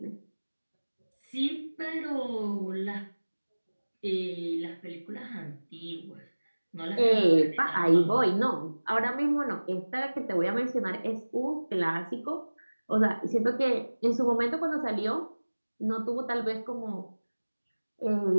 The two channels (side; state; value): both; inverted; correlation -1.00